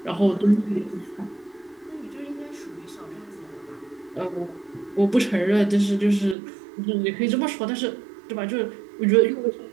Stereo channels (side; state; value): left; drops out; at 6.4 s